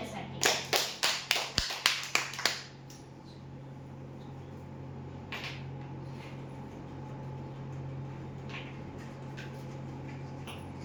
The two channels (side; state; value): both; identical; correlation 1.00